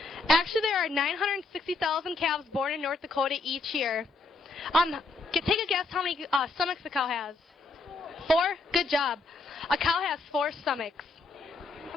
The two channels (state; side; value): quieter; right; 3.6 dB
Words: Actually, there are 960,000 calves born in North Dakota each year. Take a guess how many stomachs the cow has. 4? Good job. A cow has 4 stomachs.